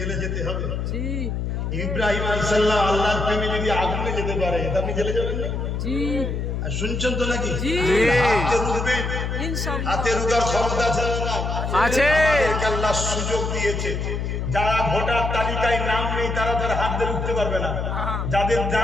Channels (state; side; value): noise; left; hum, 2 dB below the sound